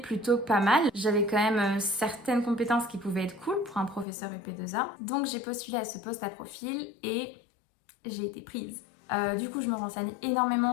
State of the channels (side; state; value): right; drops out; at 4.0 s